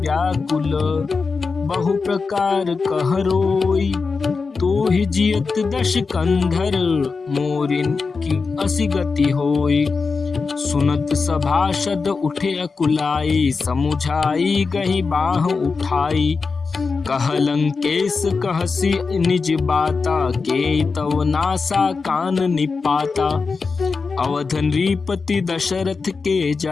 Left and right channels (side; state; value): right; quieter; 4.6 dB